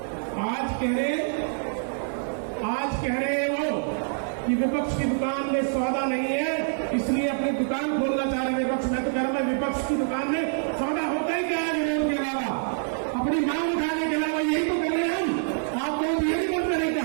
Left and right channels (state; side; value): silent; left; 61 dB below the other